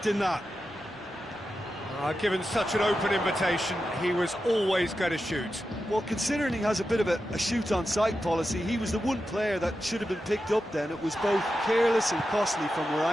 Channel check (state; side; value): normal; both; correlation 0.90